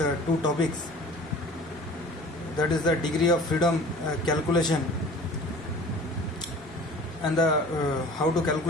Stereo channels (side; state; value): left; noise; rumble, 28 dB below the sound